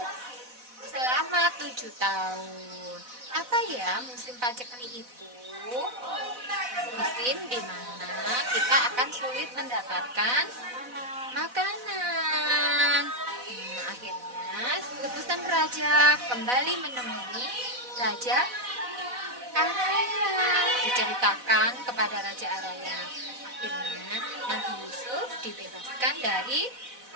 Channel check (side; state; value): left; late; 4.0 ms